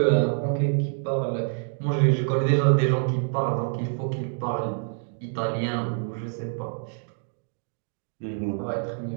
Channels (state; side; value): silent; left; 61 dB below the other